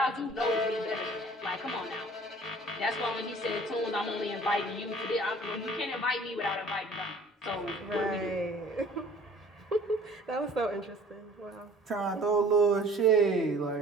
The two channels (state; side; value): normal; both; correlation 0.50